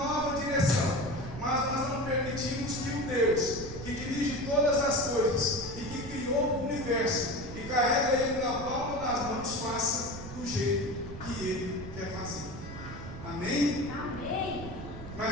direção, mas nós não permitimos que o Deus que dirige todas as coisas e que criou o universo e carrega ele na palma das mãos faça do jeito que ele quer fazer. Amém? Amém.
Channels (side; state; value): right; noise; rumble, 11 dB below the sound